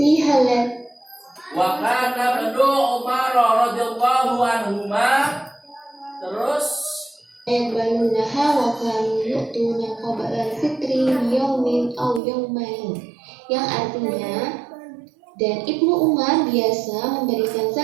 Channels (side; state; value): left; drops out; at 12.2 s